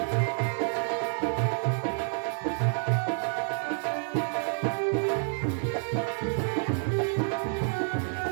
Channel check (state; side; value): silent; left; 55 dB below the other